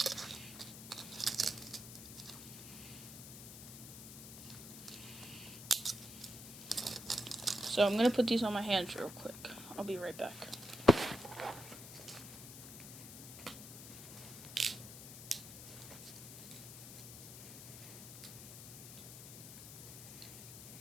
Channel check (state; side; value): noise; left; hiss, 12 dB below the sound